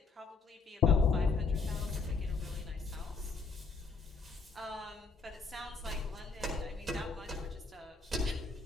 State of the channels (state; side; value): quieter; right; 4.4 dB